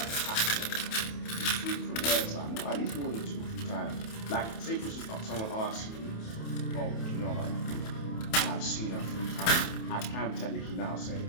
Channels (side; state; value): right; late; 28 ms